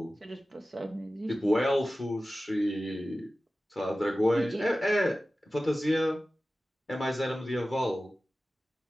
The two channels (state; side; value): normal; both; correlation 0.95